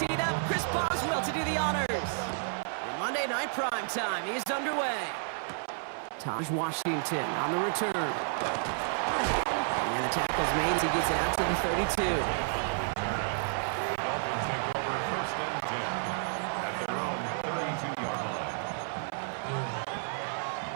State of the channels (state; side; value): silent; left; 57 dB below the other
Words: up, Chris Boswell to do the honors. And Monday Night Prime Time is underway. Taj Washington on the return. And the tackle's made as he gets it out to the 32. Dolphins take over first and 10 at their own 32-yard